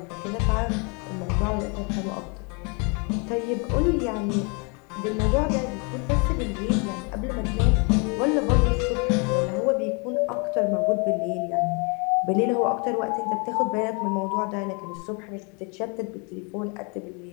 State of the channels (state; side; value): quieter; right; 33.8 dB